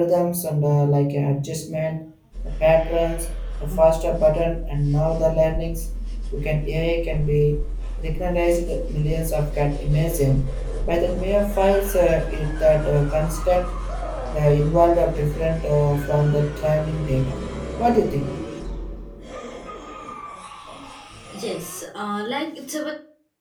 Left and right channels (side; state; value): both; identical; correlation 1.00